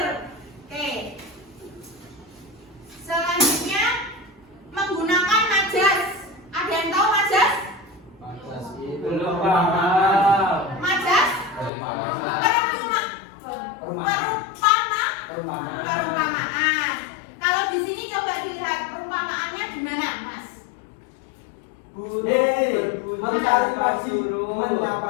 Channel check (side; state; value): right; drops out; at 11.7 s